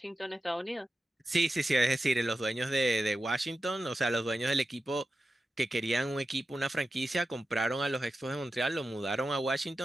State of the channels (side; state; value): both; normal; correlation 0.92